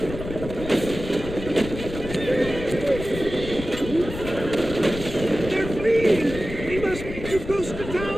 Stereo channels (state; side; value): noise; left; rumble, 9 dB below the sound